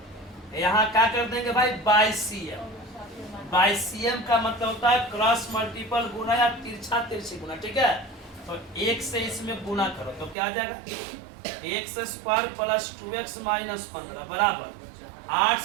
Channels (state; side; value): drops out; left; at 10.4 s